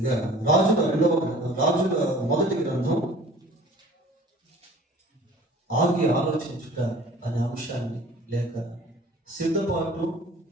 రాజుల మొదటి గ్రంథం ఆగి ఆలోచించుట అనే అంశాన్ని, లేక సిద్ధపాటు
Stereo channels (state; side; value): normal; both; correlation 0.47